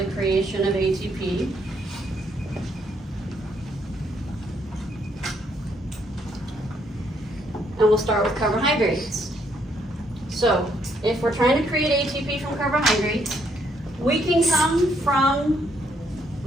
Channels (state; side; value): normal; both; correlation 0.72